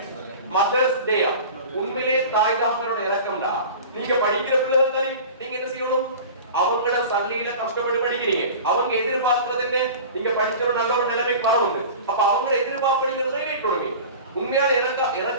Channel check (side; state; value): both; inverted; correlation -0.37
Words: மதர்ஸ் டே உண்மையிலே தாய் தகப்பனோட இறக்கம்டா. நீங்க படிக்கிற பிள்ளைகள் தானே, நீங்க என்ன செய்யணும், அவங்களோட சல்லியில கஷ்டப்பட்டு படிக்கிறீங்க. அவங்க எதிர்பார்க்கிறது என்ன, நீங்க படிச்ச ஒரு நல்ல ஒரு நிலைமைக்கு வரவங்க. அப்ப அவங்கள எதிர்பார்ப்பீங்கிறதை வைக்கணும். உண்மையான